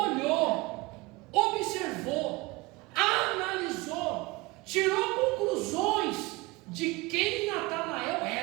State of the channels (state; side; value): quieter; left; 22.7 dB